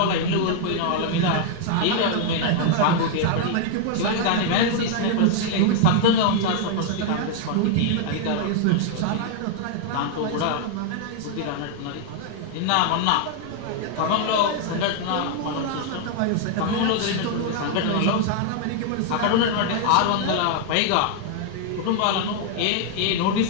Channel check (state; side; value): different; both; correlation 0.00